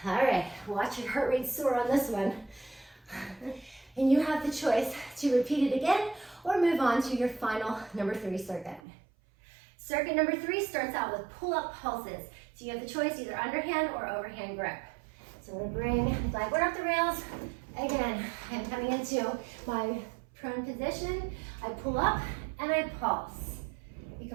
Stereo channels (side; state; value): left; drops out; at 8.8 s